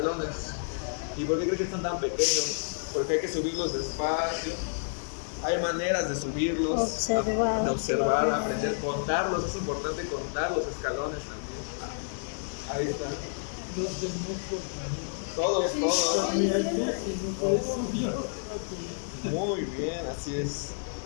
¿Y por qué creen que están tan pequeños? Porque hay que subirlos despacio. Hay maneras de subirlos, de observar, aprender, contarlos. Es importante contar los escalones también. Ahí está. Los del metro también. Todos. Y hay veces no puedes subir. Muy bien, así es.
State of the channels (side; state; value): right; silent; 58 dB below the other